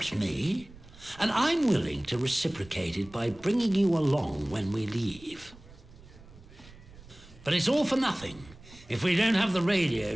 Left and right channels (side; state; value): right; noise; rumble, 21 dB below the sound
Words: me, and I'm willing to reciprocate it by bringing you along when we leave. But it's all for nothing if we don't have the radio